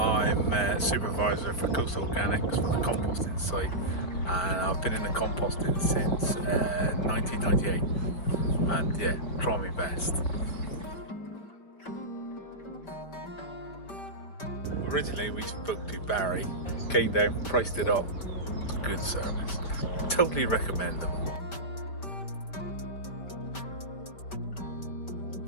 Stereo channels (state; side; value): late; right; 5.0 ms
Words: supervisor for Coastal Organics for the composting site, and I've been in the composting since 1998, and yeah, try my best. Originally we spoke to Barry, came down, priced it up, good service. Totally recommend them.